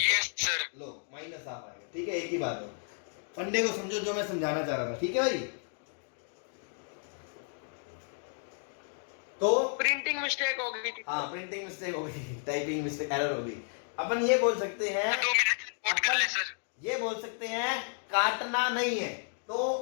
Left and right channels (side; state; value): right; silent; 56 dB below the other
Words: है, यस सर। लो माइनस हाफ आएगा, ठीक है, एक ही बात है। फंडे को समझो जो मैं समझाना चाह रहा था, ठीक है भाई। तो प्रिंटिंग मिस्टेक हो गई थी। हाँ, प्रिंटिंग मिस्टेक हो गई, टाइपिंग मिस्टेक, एरर हो गई। अपन ये बोल सकते हैं, 2 मिनट नोट कर ले सर। ये बोल सकते हैं काटना नहीं है, तो